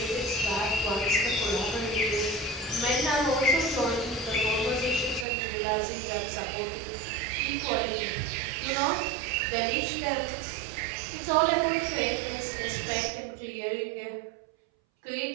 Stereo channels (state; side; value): drops out; left; at 5.2 s